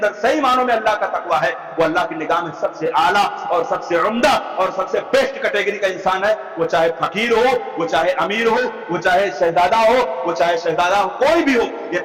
صحیح معنوں میں اللہ کا تقویٰ ہے، وہ اللہ کی نگاہ میں سب سے اعلیٰ اور سب سے عمدہ اور سب سے بیسٹ کیٹیگری کا انسان ہے۔ وہ چاہے فقیر ہو، وہ چاہے امیر ہو، وہ چاہے شہزادہ ہو، کوئی بھی ہو، یہ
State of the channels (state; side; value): identical; both; correlation 1.00